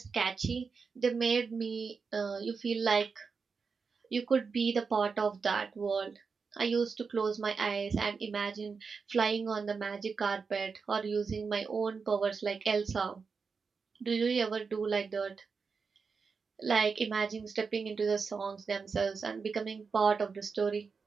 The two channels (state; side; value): quieter; left; 5.2 dB